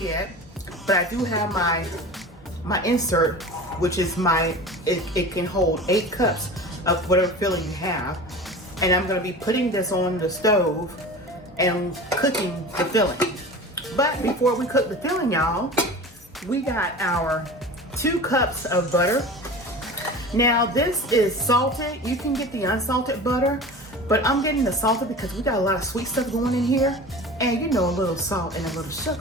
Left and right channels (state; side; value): normal; both; correlation 0.35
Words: but I do have my insert, which is it can hold 8 cups of whatever filling you have. And I'm going to be putting this on the stove and cooking the filling. But before we cook the filling, y'all, we got our 2 cups of butter. Now this is salted. You can get the unsalted butter, but I'm getting the salted because we got a lot of sweet stuff going in here. And you know, a little salt and a little